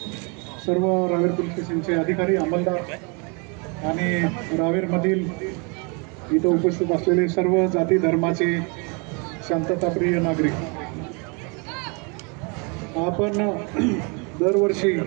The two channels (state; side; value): quieter; left; 32.8 dB